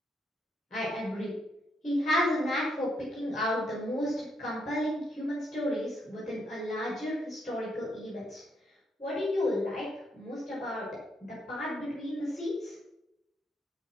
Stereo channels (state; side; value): normal; both; correlation 0.76